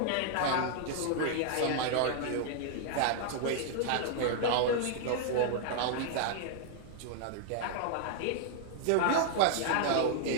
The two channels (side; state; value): both; different; correlation -0.01